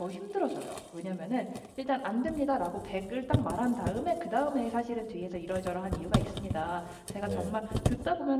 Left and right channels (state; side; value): identical; both; correlation 1.00